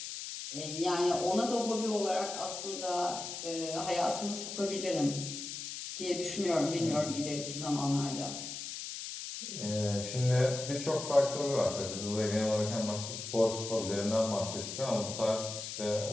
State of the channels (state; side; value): noise; left; hiss, 7 dB below the sound